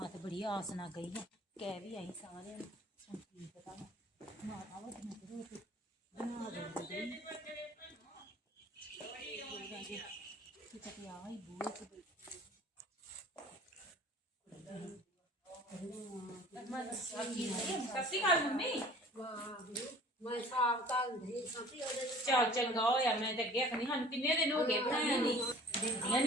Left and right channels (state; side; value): normal; both; correlation 0.48